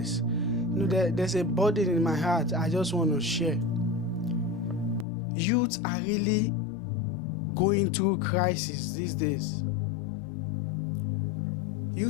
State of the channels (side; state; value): right; drops out; at 5.1 s